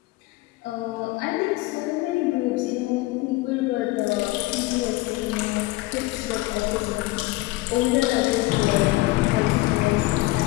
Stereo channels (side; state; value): right; quieter; 20.2 dB